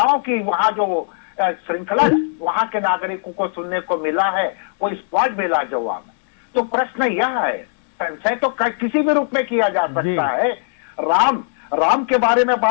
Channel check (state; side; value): silent; right; digital silence